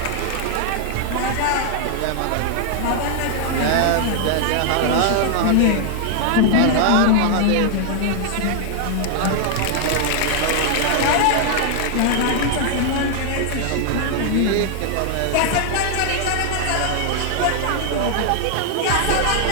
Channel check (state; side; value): different; both; correlation 0.00